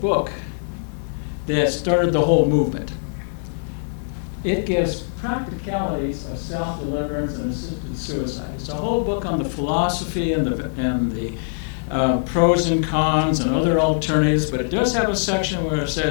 that started the whole movement. It gives practicalities of self-deliverance and assisted suicide. It's a whole book on the philosophy and the pros and cons and other alternatives, but it does have a section where it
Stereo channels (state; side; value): silent; right; digital silence